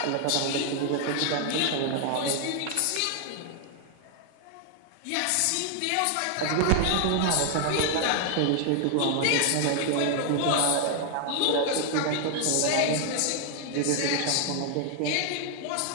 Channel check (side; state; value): both; different; correlation 0.00